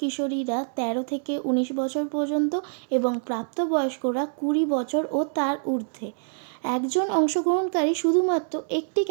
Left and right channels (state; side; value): silent; left; digital silence